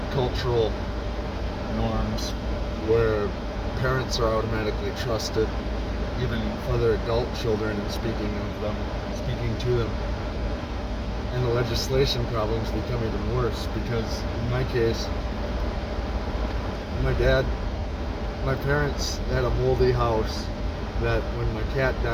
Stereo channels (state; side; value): identical; both; correlation 1.00